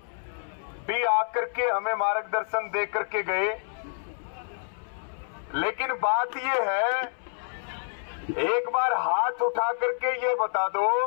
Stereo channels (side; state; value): right; silent; 59 dB below the other